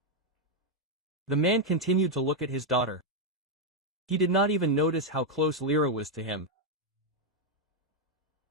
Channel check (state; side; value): normal; both; correlation 0.01